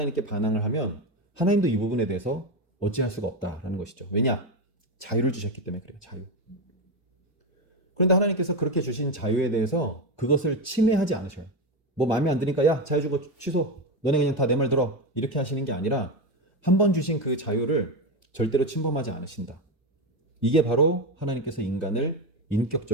반항을 하면 하나님도 이 부분에 대해서 어찌할 수가 없다라는 것이죠. 왜냐? 자유를 주셨기 때문에 그래요. 자유. 그런데 하나님께서 그렇게 주신 자유에 대해서 그것을 침해하지 않으셔요. 뭐 마음에 안 드니까 야 자유 주고 취소. 너네 그냥 다 내 말 들어. 이렇게 하시는 게 아니라 한 번 주신 그 자유를 절대로 침범하지 않으신다. 이게 바로 하나님께서 인간을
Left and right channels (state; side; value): normal; both; correlation 0.13